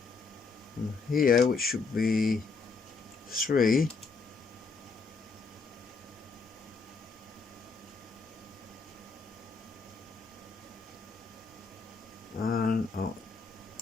and here, which should be 3. And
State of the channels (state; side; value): quieter; right; 4.6 dB